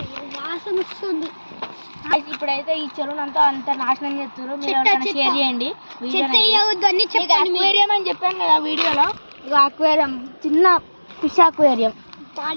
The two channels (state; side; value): inverted; both; correlation -1.00